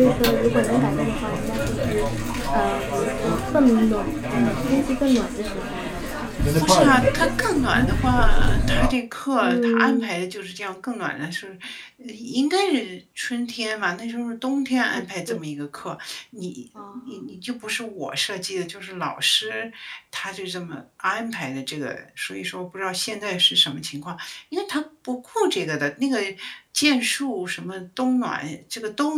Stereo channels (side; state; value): both; identical; correlation 1.00